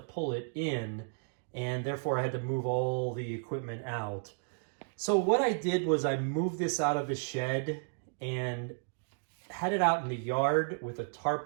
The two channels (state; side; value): silent; left; digital silence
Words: it in, and therefore I had to move all the equipment out. So what I did was I moved this out of the shed and had it out in the yard with a tarp